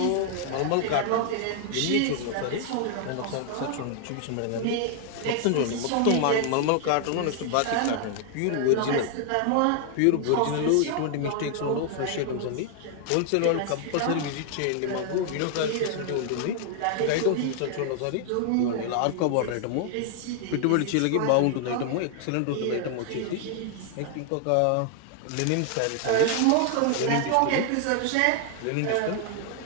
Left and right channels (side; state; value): both; different; correlation 0.00